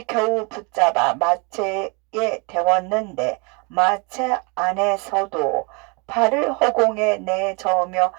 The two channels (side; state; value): left; quieter; 31.6 dB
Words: 겨우 붙잡아 마차에 태웠는데 마차 안에서도 발을 허공에 내저으며